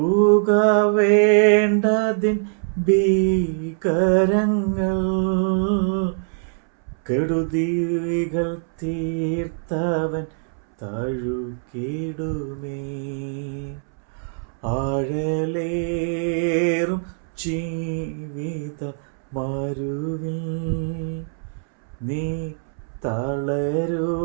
വേണ്ടതിൻ ഭീകരങ്ങൾ കെടുതികൾ തീർത്തവൻ തഴുകിടുമേ. ആഴലേറും ജീവിത മരുവിൽ നീ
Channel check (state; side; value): silent; left; 64 dB below the other